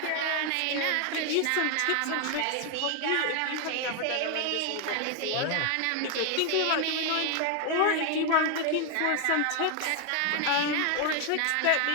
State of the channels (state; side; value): different; both; correlation 0.01